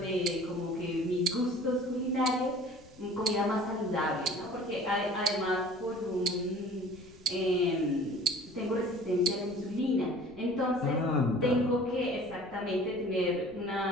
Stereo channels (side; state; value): left; noise; rumble, 23 dB below the sound